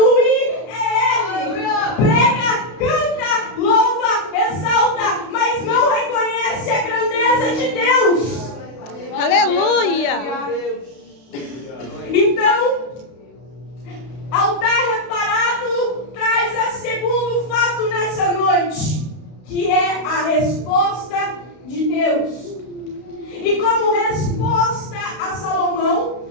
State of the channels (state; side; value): late; right; 32 ms